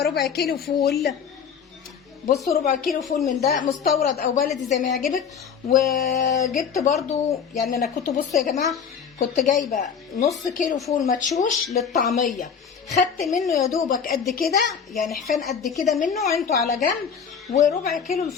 ربع كيلو فول. بصوا ربع كيلو فول من ده مستورد او بلدي زي ما يعجبك. وجبت برضو، يعني انا كنت بصوا يا جماعه، كنت جايبه نص كيلو فول مدشوش للطعميه، خدت منه يا دوبك قد كده، يعني حفان قد كده منه عينته على جنب. وربع كيلو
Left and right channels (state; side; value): quieter; right; 7.0 dB